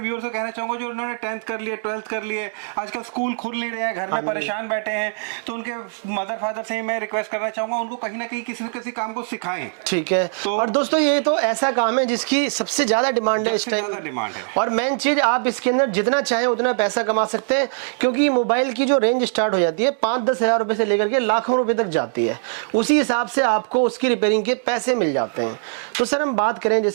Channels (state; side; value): silent; left; digital silence